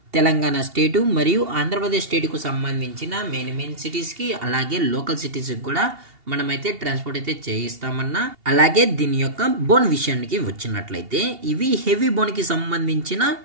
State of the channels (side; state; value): left; late; 2.8 ms